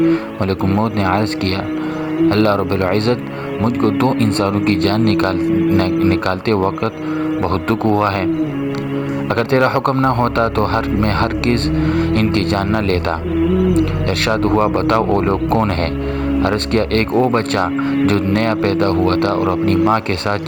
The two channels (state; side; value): identical; both; correlation 1.00